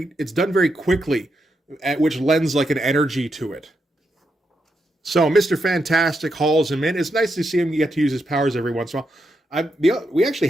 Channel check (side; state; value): both; normal; correlation 0.83